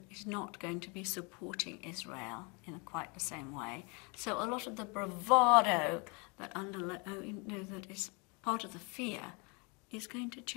it's not going to be supporting Israel in quite the same way. So a lot of the bravado that that is part of the fear is going to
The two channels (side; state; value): right; quieter; 31.5 dB